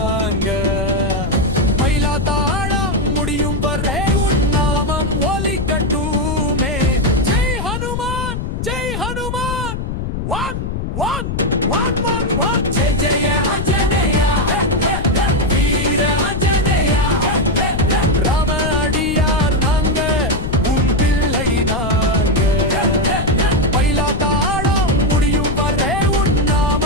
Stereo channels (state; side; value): noise; left; rumble, 4 dB below the sound